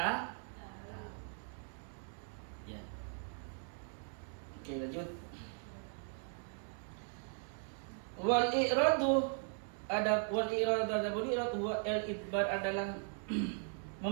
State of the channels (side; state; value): left; silent; 52 dB below the other